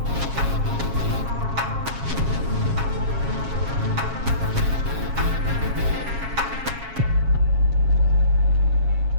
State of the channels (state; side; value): late; left; 7.3 ms